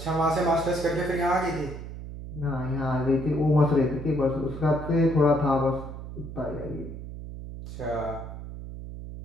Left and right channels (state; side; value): noise; right; hum, 10 dB below the sound